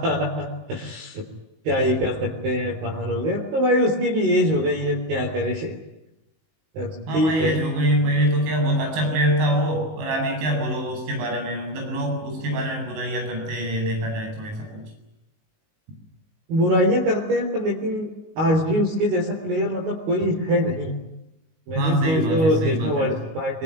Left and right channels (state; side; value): late; left; 19 ms